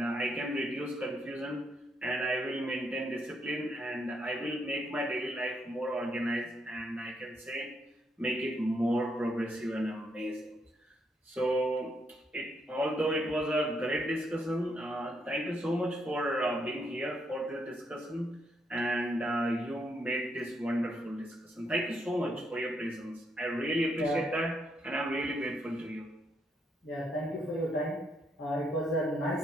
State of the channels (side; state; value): both; normal; correlation 0.76